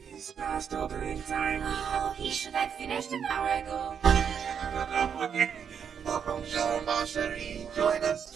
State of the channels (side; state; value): left; quieter; 7.5 dB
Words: past opening time. Oh, he should have finished an hour ago. Welcome, Jean Marcherie. Join us.